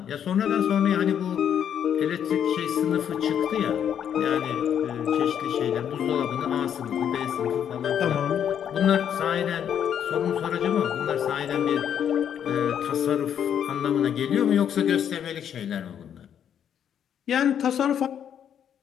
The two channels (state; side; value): quieter; right; 9.0 dB